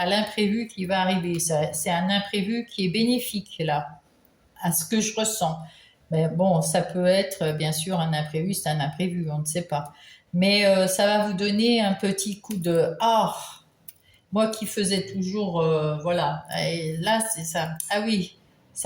l'imprévu qui va arriver. C'est un imprévu qui est bénéfique là, à ce que je ressens. Mais bon, ça peut être bien sûr un imprévu, c'est un imprévu, on ne sait pas. Mais ça va vous donner un petit coup de ah, moi qui faisais toujours, voilà. Et là, c'est ça. Ah oui,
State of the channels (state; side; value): identical; both; correlation 1.00